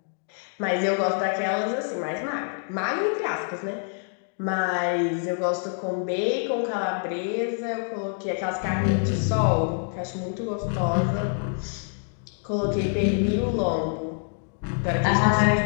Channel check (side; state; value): right; silent; 55 dB below the other